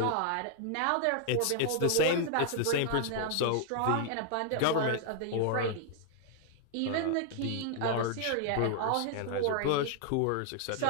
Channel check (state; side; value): different; both; correlation 0.00